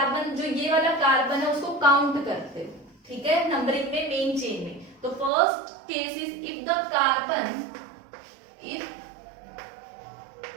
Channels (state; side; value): drops out; left; at 5.3 s